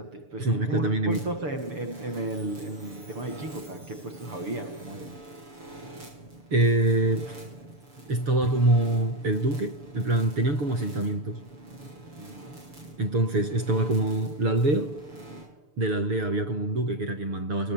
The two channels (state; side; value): late; left; 6.9 ms